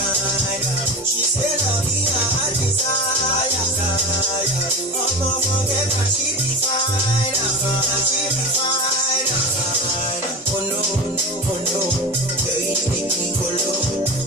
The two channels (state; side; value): normal; both; correlation 0.27